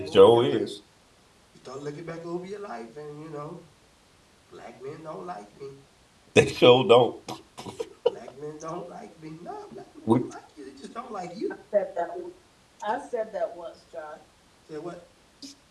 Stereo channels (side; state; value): both; identical; correlation 1.00